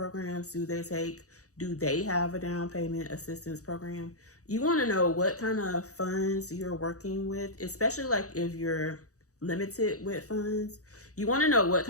do they take. Do they have a down payment assistance program? You want to know what kind of funds you're working with, especially like if you're limited with funds. You want to know what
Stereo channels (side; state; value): right; late; 0.65 ms